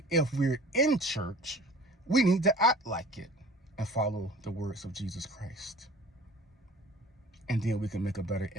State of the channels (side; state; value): both; normal; correlation 0.46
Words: if we're in church, we need to act like it and follow the words of Jesus Christ. And then we can make a better